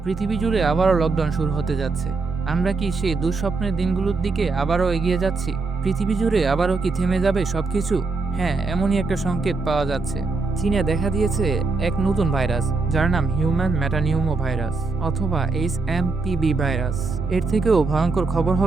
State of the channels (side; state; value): left; quieter; 3.9 dB